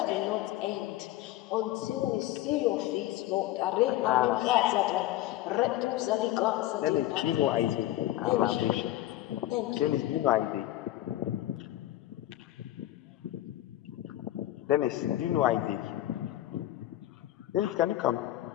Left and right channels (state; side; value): quieter; right; 14.8 dB